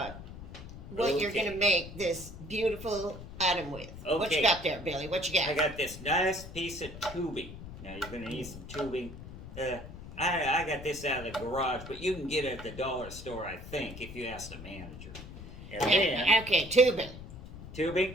what you're Okay. going to make this beautiful item with. What you Okay. got there, Billy? What you got? I got this nice piece of tubing. Now, you're going to need some tubing. I got this out of the garage, but you can get it at the dollar store, I think, if you ask the manager. And then, Okay, tubing.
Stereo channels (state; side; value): noise; left; rumble, 12 dB below the sound